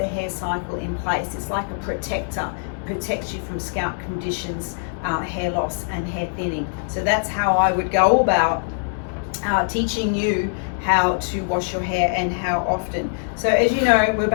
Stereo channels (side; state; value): right; silent; digital silence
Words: hair cycle in place. It's like a protector, protects you from scalp conditions, hair loss and hair thinning. So that's how I would go about teaching you how to wash your hair and how often. So as you know, we're